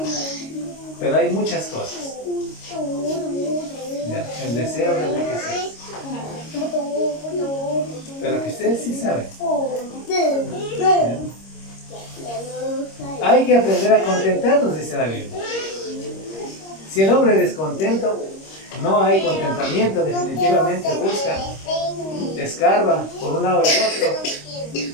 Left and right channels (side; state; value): right; late; 26 ms